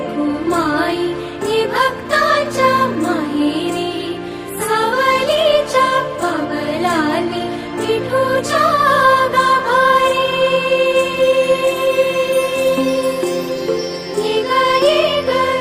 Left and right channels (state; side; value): identical; both; correlation 1.00